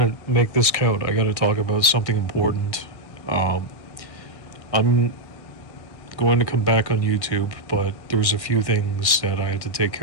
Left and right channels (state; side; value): late; right; 1.6 ms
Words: to make this count. I got to talk about something important. I'm going to come back on YouTube, but there's a few things that I had to take